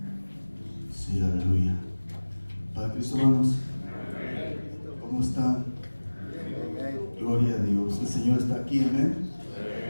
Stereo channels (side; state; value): both; inverted; correlation -1.00